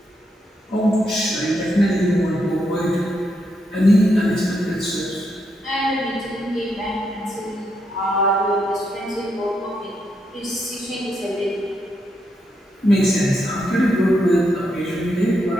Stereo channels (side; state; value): both; normal; correlation 0.81